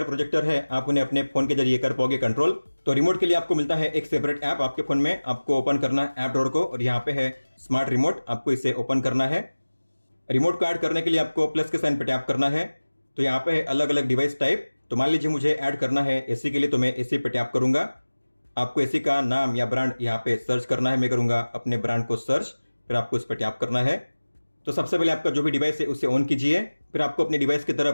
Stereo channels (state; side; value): inverted; both; correlation -1.00